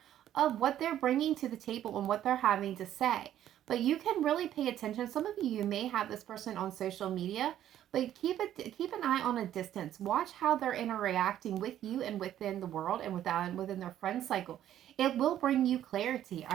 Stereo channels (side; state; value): left; quieter; 11.6 dB